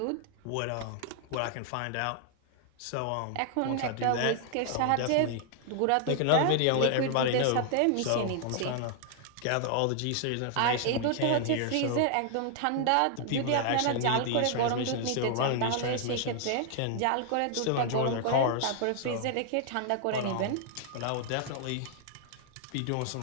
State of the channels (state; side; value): different; both; correlation 0.00